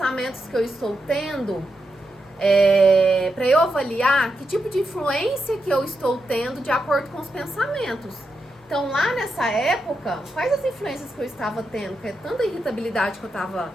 que eu estou tendo para eu avaliar que tipo de influência que eu estou tendo de acordo com os pensamentos? Então, lá nessa época, quais as influências que eu estava tendo? Que é tanta irritabilidade que eu estava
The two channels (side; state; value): both; normal; correlation 0.85